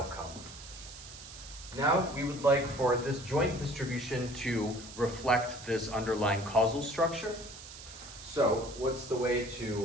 Now we would like for this joint distribution to reflect this underlying causal structure. So what's the way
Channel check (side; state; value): right; noise; hiss, 14 dB below the sound